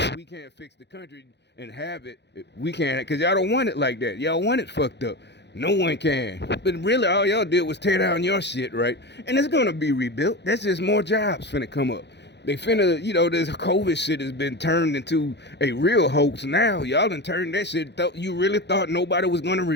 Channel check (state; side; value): late; right; 0.50 ms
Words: we can't fix the country and have it, we can't, because y'all don't want it like that. Y'all want it fucked up. No one can. But really, all y'all did was tear down your shit, right? And it's going to be rebuilt. That's just more jobs finna come up. They finna, this COVID shit has been turned into a real hoax now. Y'all done turned that shit. You really thought nobody was going to